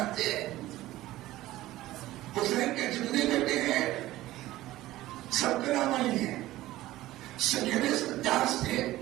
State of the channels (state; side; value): quieter; left; 16.2 dB